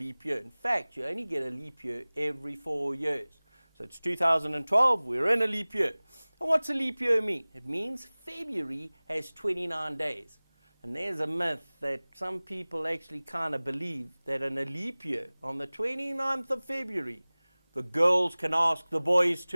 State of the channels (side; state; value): both; inverted; correlation -1.00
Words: year. In fact, you only get a leap year every 4 years. So it's 2012, we're in a leap year. And what's a leap year mean? It means February has 29 days. And there's a myth that some people actually kind of believe that in a leap year, on the 29th of February, the girls can ask the boys